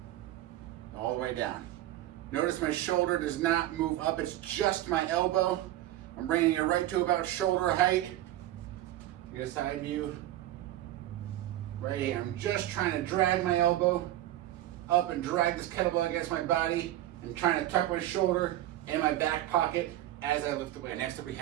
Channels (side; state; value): left; quieter; 14.3 dB